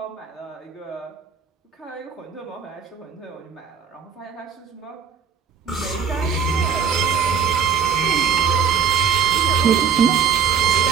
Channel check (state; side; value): quieter; left; 7.2 dB